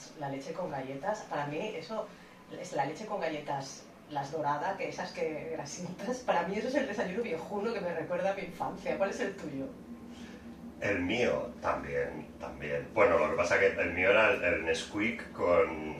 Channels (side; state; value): both; identical; correlation 1.00